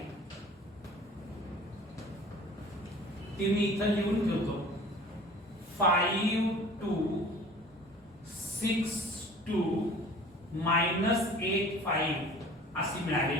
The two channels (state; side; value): normal; both; correlation 0.45